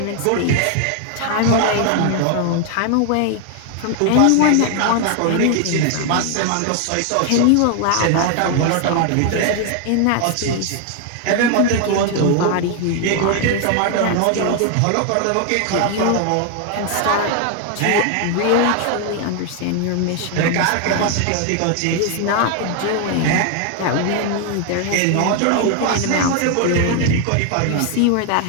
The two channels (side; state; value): both; different; correlation 0.00